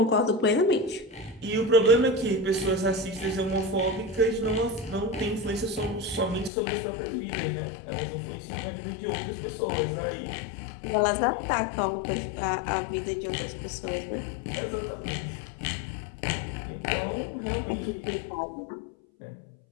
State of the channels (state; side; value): drops out; right; at 6.5 s